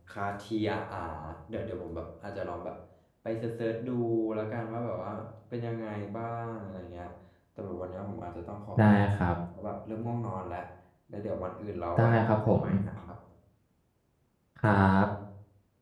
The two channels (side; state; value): both; identical; correlation 1.00